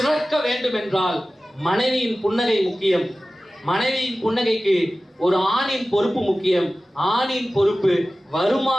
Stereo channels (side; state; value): both; normal; correlation 0.96